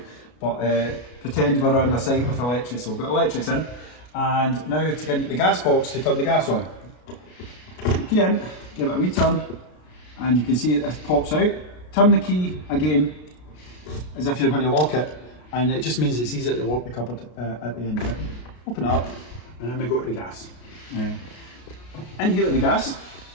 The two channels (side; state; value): right; late; 33 ms